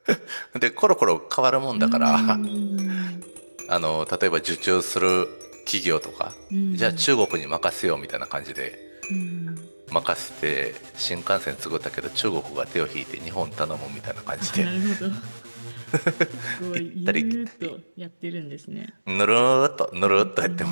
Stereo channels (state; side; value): inverted; both; correlation -1.00